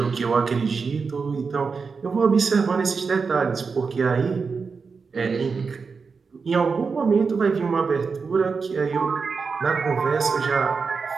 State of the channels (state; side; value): quieter; left; 5.0 dB